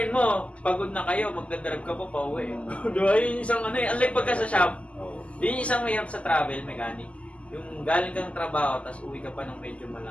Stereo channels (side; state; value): right; late; 0.062 ms